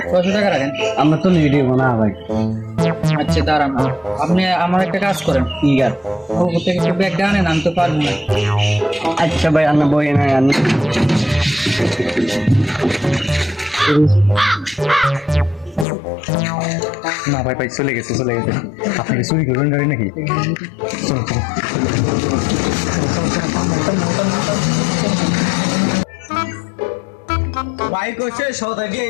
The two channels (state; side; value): drops out; right; at 15.9 s